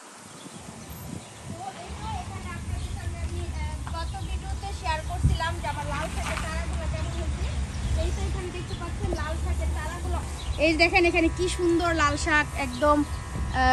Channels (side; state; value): both; identical; correlation 1.00